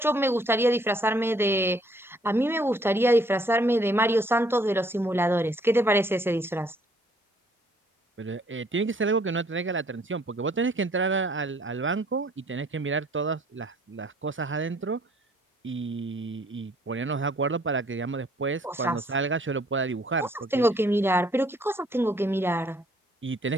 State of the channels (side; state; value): both; normal; correlation 0.63